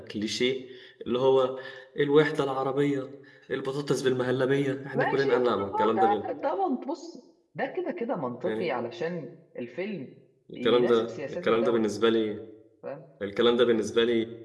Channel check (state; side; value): identical; both; correlation 1.00